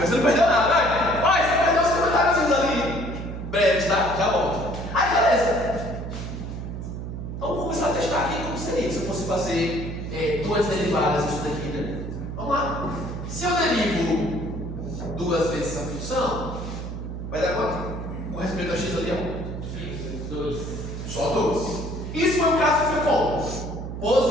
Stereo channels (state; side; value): noise; right; hum, 7 dB below the sound